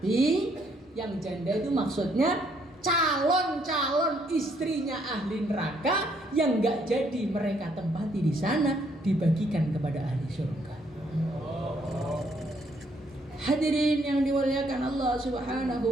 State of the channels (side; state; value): both; normal; correlation 0.69